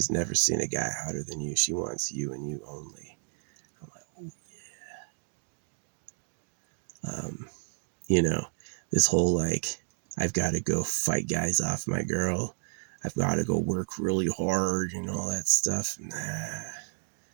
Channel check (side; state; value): left; silent; digital silence